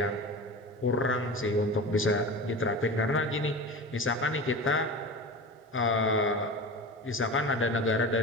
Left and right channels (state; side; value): normal; both; correlation 0.31